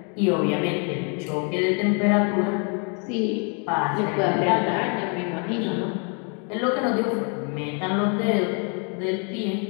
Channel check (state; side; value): quieter; right; 38.1 dB